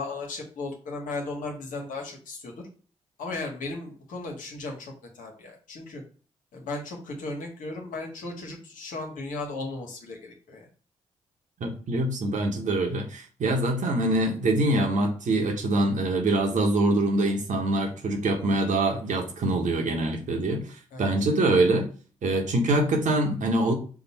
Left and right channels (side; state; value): both; normal; correlation 0.54